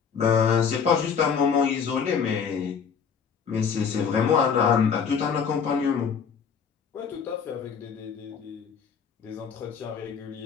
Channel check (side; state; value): right; quieter; 6.5 dB